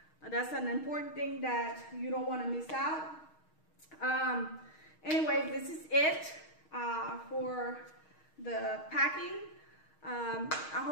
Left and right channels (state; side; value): late; right; 6.4 ms